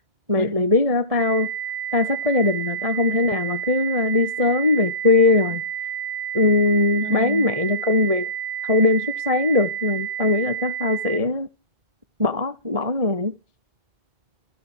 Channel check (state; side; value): late; left; 1.7 ms